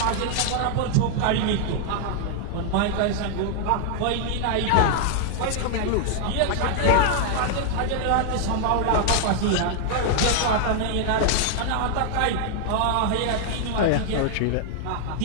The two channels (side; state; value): both; different; correlation 0.00